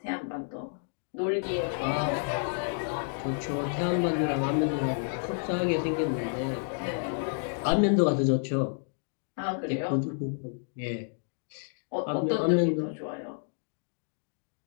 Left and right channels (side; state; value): right; silent; digital silence